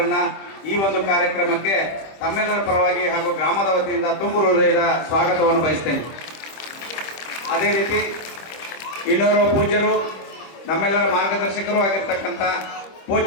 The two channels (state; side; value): late; right; 26 ms